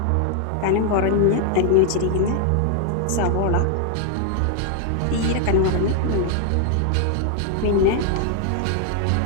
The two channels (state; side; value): different; both; correlation 0.00